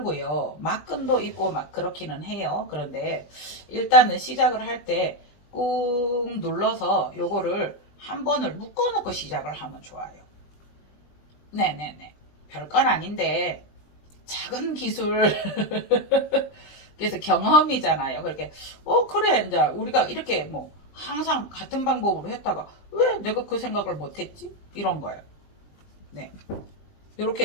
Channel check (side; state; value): right; late; 20 ms